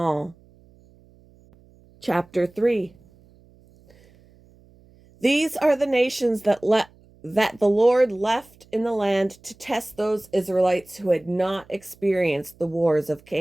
Chapter 3. These are the nations that the Lord left in the land to test those Israelites who had not experienced the wars of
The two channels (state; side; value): noise; right; hum, 28 dB below the sound